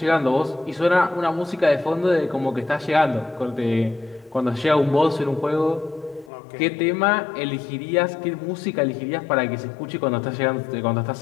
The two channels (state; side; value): drops out; right; at 6.3 s